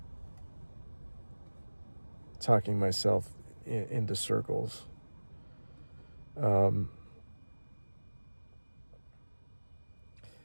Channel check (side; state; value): both; inverted; correlation -1.00